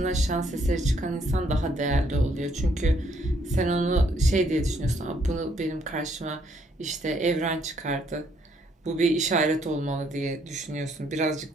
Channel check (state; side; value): normal; both; correlation 0.69